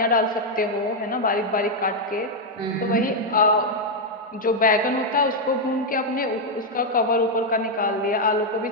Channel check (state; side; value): normal; both; correlation 0.00